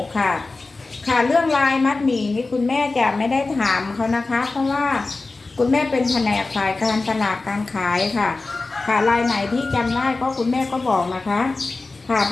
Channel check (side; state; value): right; quieter; 3.5 dB